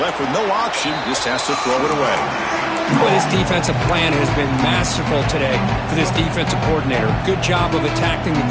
with no option, just has to throw it away. Well, this defensive plan has been masterful today for this defensive coordinator. Good job of attacking the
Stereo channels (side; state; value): both; identical; correlation 1.00